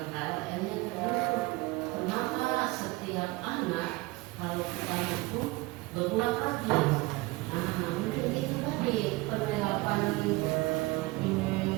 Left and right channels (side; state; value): left; quieter; 22.0 dB